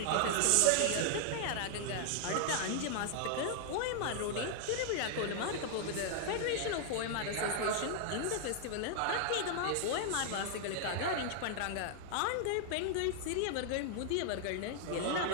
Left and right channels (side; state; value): both; different; correlation 0.00